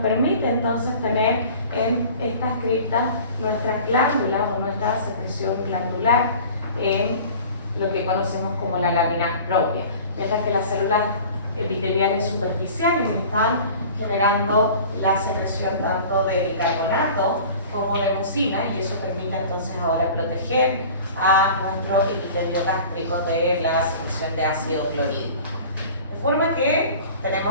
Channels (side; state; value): both; inverted; correlation -0.42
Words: entonces tener en estas criptas nuestras glándulas o nuestra secreción glandular en lo que conocemos como la lámina propia. Mientras que las células epiteliales superficiales están generando la secreción tanto de bicarbonato como de mucina, y eso permite entonces ahora proteger a nuestro epitelio gástrico de la secreción de ácido clorhídrico. De forma que